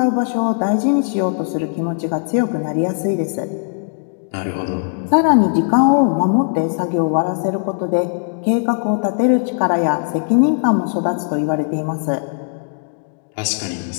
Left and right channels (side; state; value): right; silent; digital silence